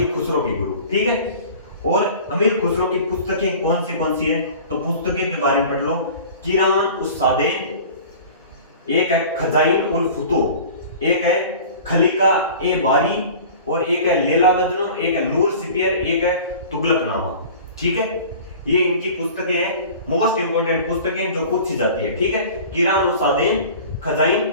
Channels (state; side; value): inverted; both; correlation -0.41